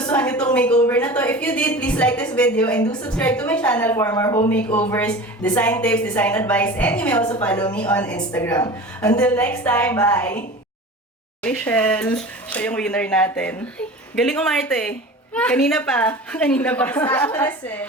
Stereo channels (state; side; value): normal; both; correlation 0.36